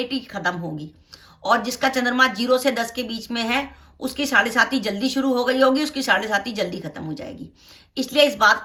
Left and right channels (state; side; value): identical; both; correlation 1.00